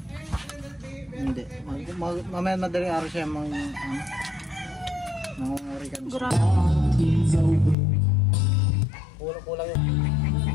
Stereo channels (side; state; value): right; drops out; at 7.8 s